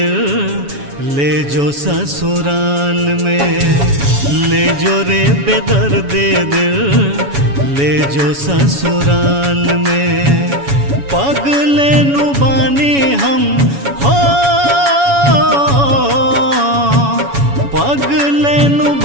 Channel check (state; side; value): late; left; 7.1 ms